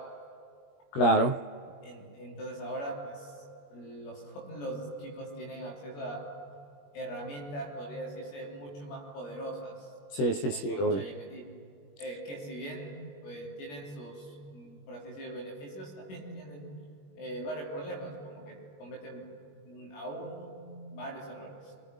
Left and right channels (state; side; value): late; right; 21 ms